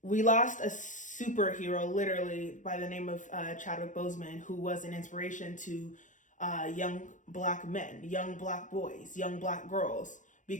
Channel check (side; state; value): right; late; 0.37 ms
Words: We lost a superhero, literally, by the name of Chadwick Boseman, who was an inspiration to young Black men, young Black boys, young Black girls.